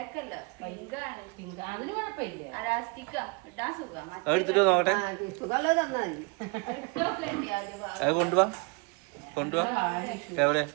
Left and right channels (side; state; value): left; quieter; 30.3 dB